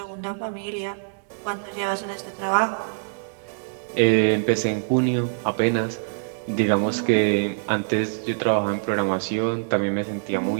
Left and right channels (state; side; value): silent; left; digital silence